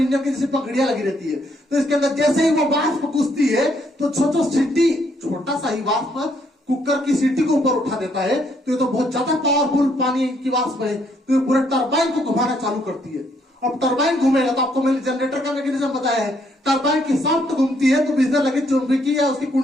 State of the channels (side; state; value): both; normal; correlation 0.71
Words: इंजन की जैसे पकड़ियां लगी रहती है, तो इसके अंदर जैसे ही वो वाष्प घुसती है तो छोटो सीटी, छोटा सा ही वाष्प कुकर की सीटी को ऊपर उठा देता है। तो ये तो बहुत ज्यादा पावरफुल पानी की वाष्प है, तो ये पूरे टरबाइन को घुमाना चालू करती है। अब टरबाइन घूमेगा तो आपको मैंने जनरेटर का मैकेनिज्म बताया है, टरबाइन की शाफ्ट घूमती है तो बिजली लगी चुंबकीय या उसकी